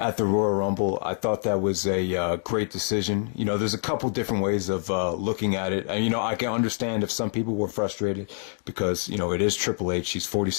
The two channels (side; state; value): right; silent; digital silence